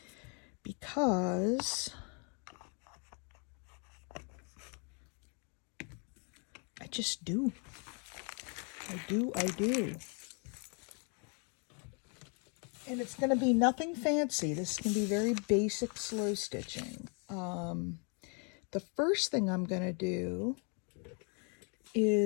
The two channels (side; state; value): right; quieter; 37.5 dB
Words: Because I just do. I do. And it's going to be nothing fancy. This is going to be very basic slow stitching. The first thing I'm going to do